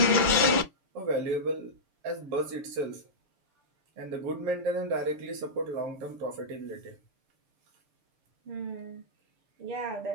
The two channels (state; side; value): late; left; 6.0 ms